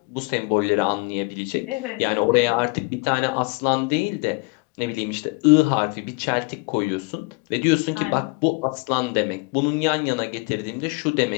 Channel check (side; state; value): right; quieter; 28.8 dB